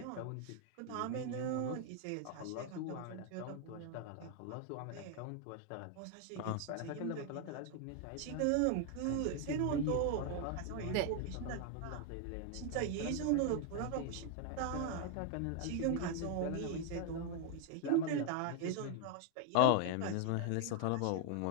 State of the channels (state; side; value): different; both; correlation 0.01